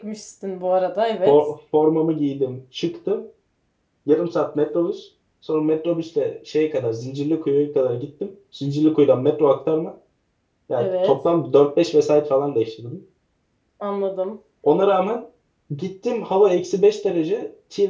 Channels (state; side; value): identical; both; correlation 1.00